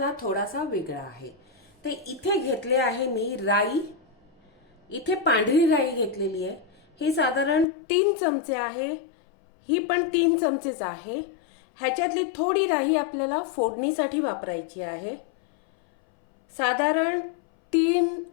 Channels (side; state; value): right; drops out; at 7.7 s